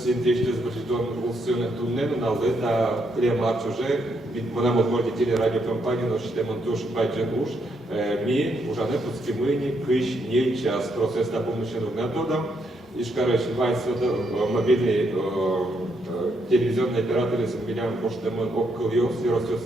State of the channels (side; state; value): both; normal; correlation 0.77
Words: інтрижки з бачитом усюне тунне, але та клемарч уже, вона можна тілі радіокомпанії, но ще монтуш байджен уж, ми уже не подскимыни, кыш, не час, процесс на помощных методом. И, короче, мобильный телевизионный оператор из Милян Поштемон Оккольос,